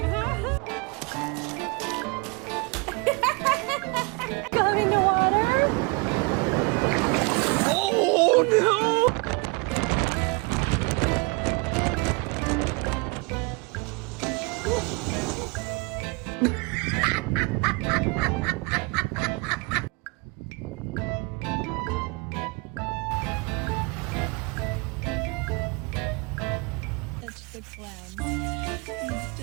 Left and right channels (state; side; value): quieter; left; 29.5 dB